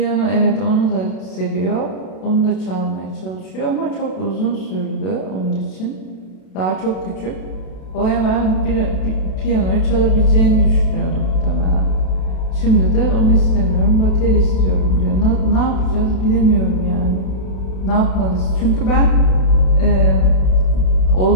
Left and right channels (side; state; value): right; late; 32 ms